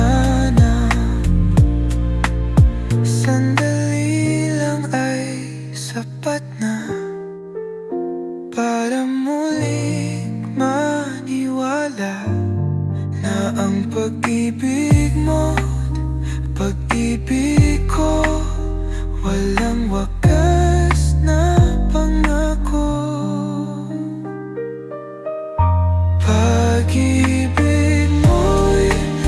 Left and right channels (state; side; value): identical; both; correlation 1.00